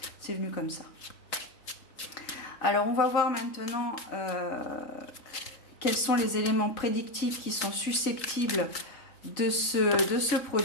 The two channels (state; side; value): late; right; 3.8 ms